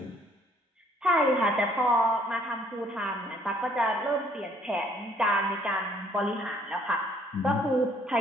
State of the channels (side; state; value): both; normal; correlation 0.62